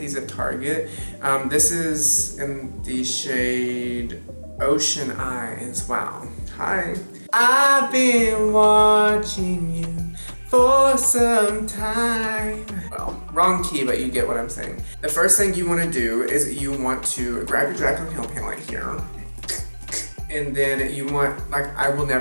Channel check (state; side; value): inverted; both; correlation -1.00